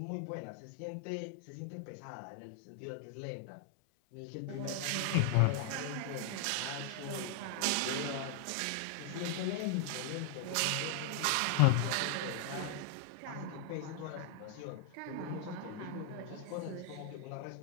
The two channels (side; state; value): both; different; correlation 0.00